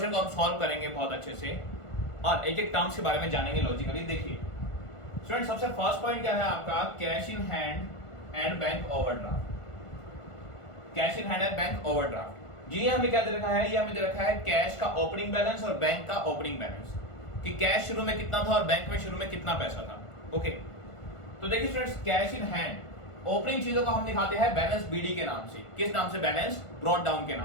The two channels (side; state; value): right; late; 1.5 ms